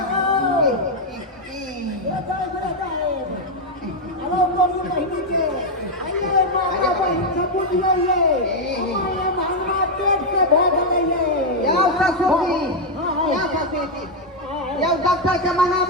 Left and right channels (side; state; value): both; normal; correlation 0.01